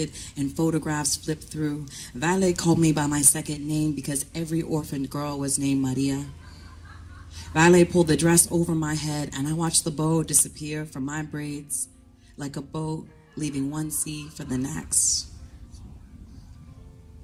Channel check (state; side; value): identical; both; correlation 1.00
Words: and photographs flipped through, Vale called me by my second name because every orphaned girl was named Maria. Vale pulled the dress over my head, and I watched the bow disappear from my braids like a boat leaving one sea for the next.